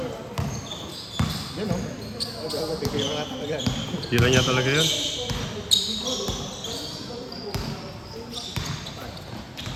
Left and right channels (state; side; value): identical; both; correlation 1.00